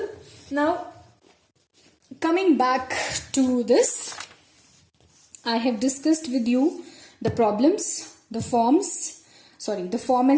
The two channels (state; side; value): identical; both; correlation 1.00